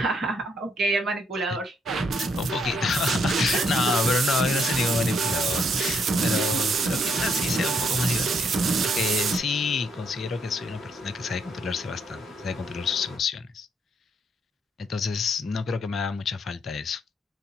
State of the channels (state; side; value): normal; both; correlation 0.73